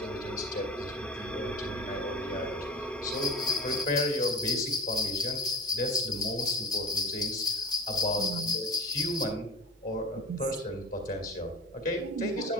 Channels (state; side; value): normal; both; correlation 0.35